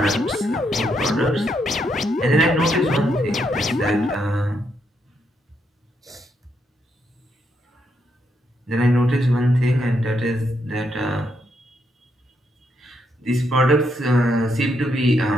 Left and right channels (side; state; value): both; normal; correlation 0.78